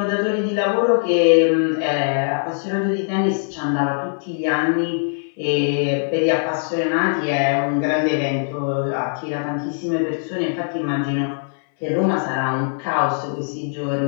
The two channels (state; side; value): silent; right; 65 dB below the other